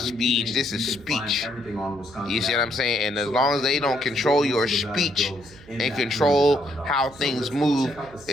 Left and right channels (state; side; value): noise; right; hum, 22 dB below the sound